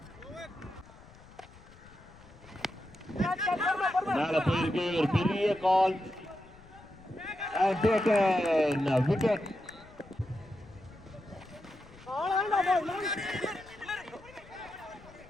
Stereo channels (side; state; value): left; noise; rumble, 22 dB below the sound